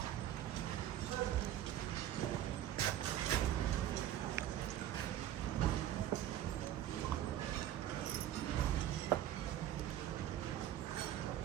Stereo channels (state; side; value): quieter; left; 11.8 dB